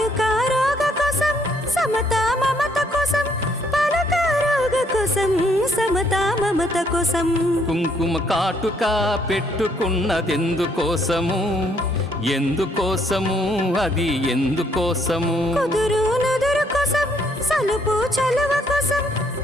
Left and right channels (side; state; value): both; normal; correlation 0.69